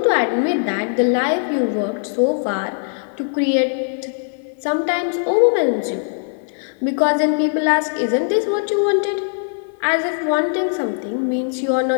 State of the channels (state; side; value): silent; right; 58 dB below the other